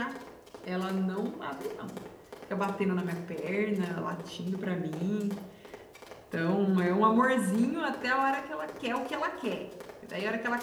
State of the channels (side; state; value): both; identical; correlation 1.00